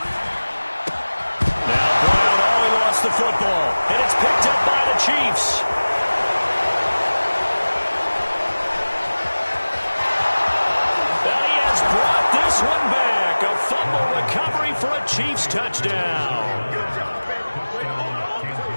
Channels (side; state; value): both; inverted; correlation -1.00